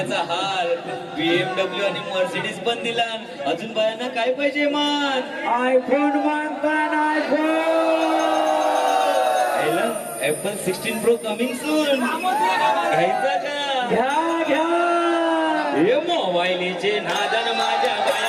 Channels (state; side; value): identical; both; correlation 1.00